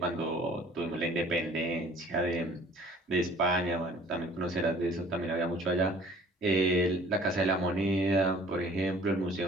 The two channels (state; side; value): normal; both; correlation 0.52